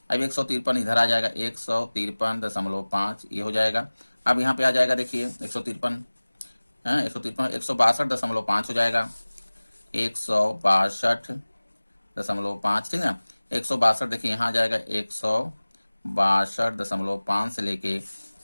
अब 153 इधर आ जाएगा, 153.5 ये हो जाएगा। अब यहाँ पे आ जाएगा देखिए 153 है 162.5 हो जाएगा, 162.5, ठीक है। 162 देखिए यहाँ आ जाएगा 162.5 से लेके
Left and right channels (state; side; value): inverted; both; correlation -1.00